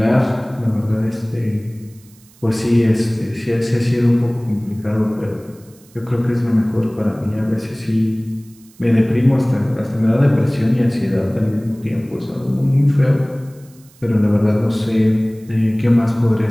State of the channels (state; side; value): noise; right; hiss, 28 dB below the sound